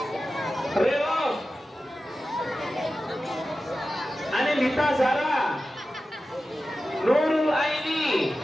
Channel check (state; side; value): normal; both; correlation 0.93